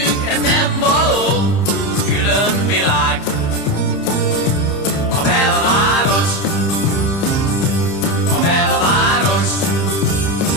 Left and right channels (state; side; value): late; right; 30 ms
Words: ez nem való. Külön világ, a belváros, a belváros,